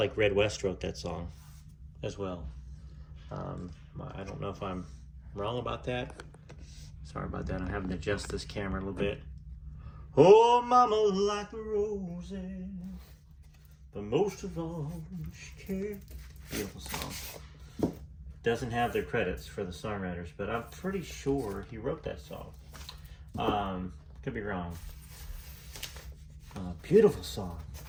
Red West wrote that song as well. I don't know if I'm wrong about that. Sorry about that. I'm having to adjust this camera a little bit. Oh, mama like the roses, but most of all she cared. Beautiful song. Doesn't have their credits for the songwriters, but I'm pretty sure he wrote that song. Could be wrong. Beautiful song.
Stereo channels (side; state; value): both; identical; correlation 1.00